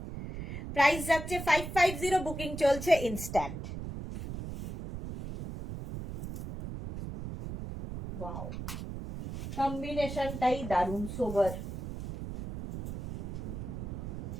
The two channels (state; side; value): noise; right; rumble, 7 dB below the sound